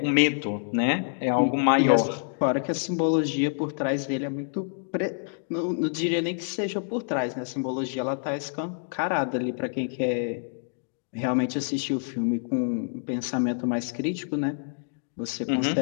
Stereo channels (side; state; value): right; silent; digital silence